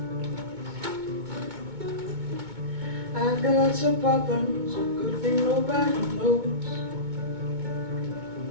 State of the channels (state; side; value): late; left; 2.2 ms